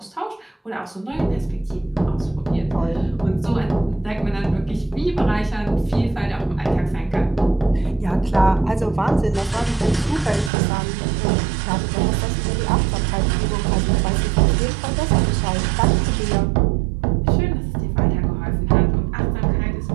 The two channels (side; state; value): left; drops out; at 10.5 s